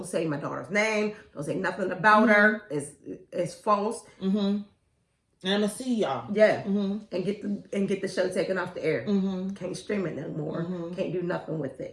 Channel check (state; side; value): identical; both; correlation 1.00